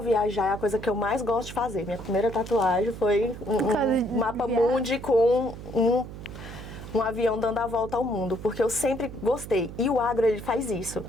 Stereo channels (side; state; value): right; noise; hum, 12 dB below the sound